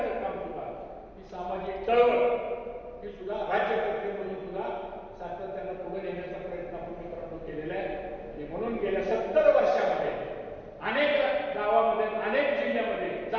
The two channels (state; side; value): identical; both; correlation 1.00